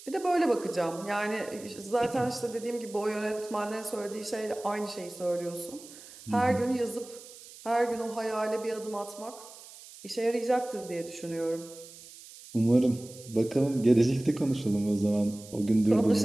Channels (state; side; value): noise; right; hiss, 18 dB below the sound